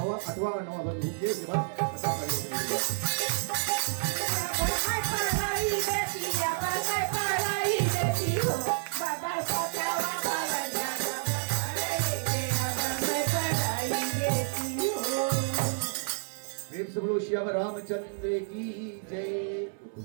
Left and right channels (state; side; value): silent; left; digital silence